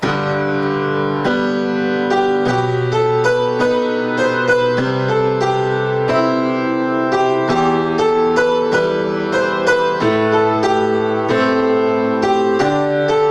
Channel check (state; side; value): identical; both; correlation 1.00